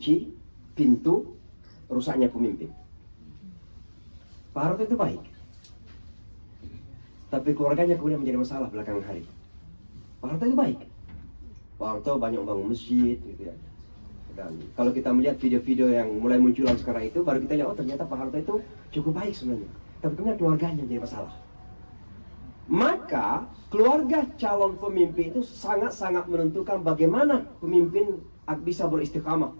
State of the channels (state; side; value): inverted; both; correlation -1.00